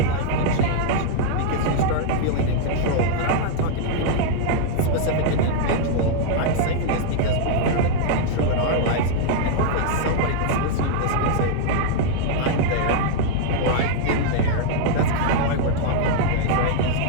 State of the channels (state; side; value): different; both; correlation -0.01